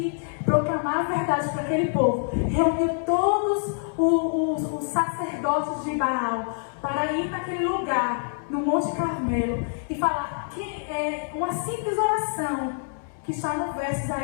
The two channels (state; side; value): silent; right; digital silence